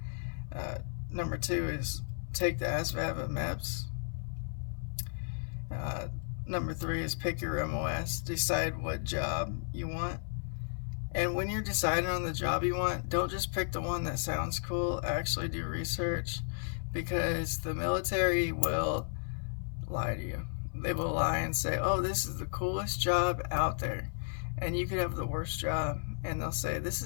Uh, Number two is take the ASVAB at MEPS. Uh, Number three is pick your MOS, decide what job you want. And when you're deciding on the job you want, don't just pick the one that sounds cool. Actually do research, because the military will lie to you. They will lie and say, oh, this is the coolest job out there. And you could have the worst job, and they'll say, this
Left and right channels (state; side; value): silent; right; 55 dB below the other